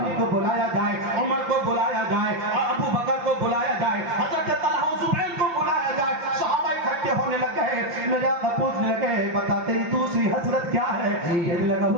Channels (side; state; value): left; late; 5.8 ms